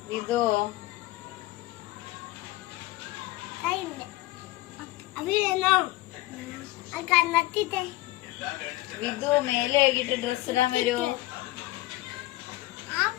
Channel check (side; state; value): right; quieter; 18.2 dB